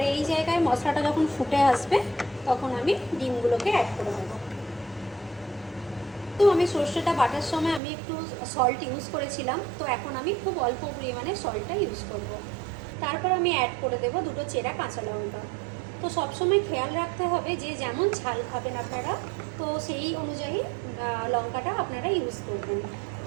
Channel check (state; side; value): drops out; left; at 7.8 s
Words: এই জায়গায় মশলাটা যখন ফুটে আসবে, তখন আমি ডিমগুলোকে অ্যাড করে দেবো। তো আমি সর্ষেটা বাটার সময় আমি একটু সল্ট ইউজ করেছিলাম, তো এখন আমি খুব অল্প পরিমাণে সল্টটা ইউজ করব। তারপর আমি অ্যাড করে দেবো 2টো চেরা কাঁচা লঙ্কা। তো সবসময় খেয়াল রাখতে হবে যে যেমন ঝাল খাবেন আপনারা, তো সেই অনুযায়ী লঙ্কাটা আপনারা ইউজ করবেন।